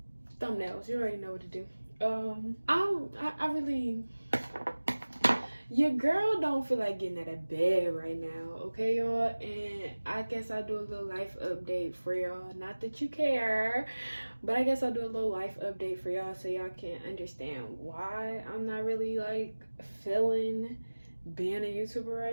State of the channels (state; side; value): inverted; both; correlation -1.00